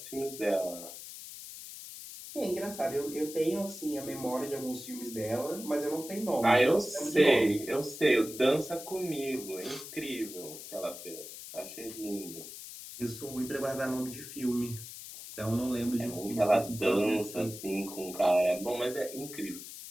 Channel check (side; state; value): left; noise; hiss, 12 dB below the sound